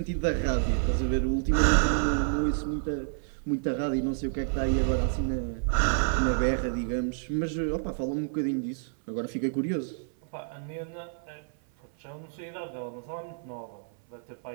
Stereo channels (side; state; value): left; silent; 56 dB below the other